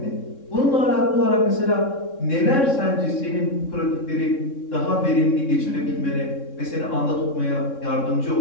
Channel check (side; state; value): right; late; 3.6 ms